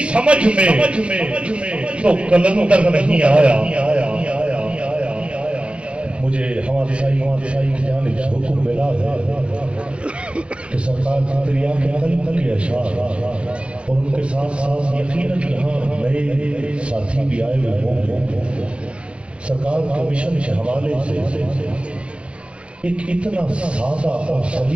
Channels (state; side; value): late; left; 0.058 ms